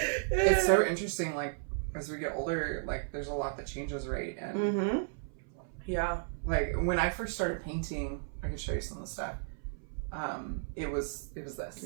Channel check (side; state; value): left; silent; 55 dB below the other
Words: It's so interesting. Like as we get older, like there's a lot that changes, right? And Mm-hmm. Yeah. like when I first started painting, I could show you some of the stuff. It was this.